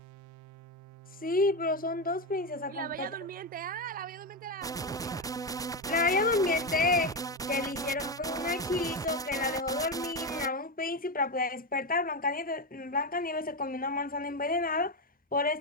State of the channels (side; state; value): both; normal; correlation 0.11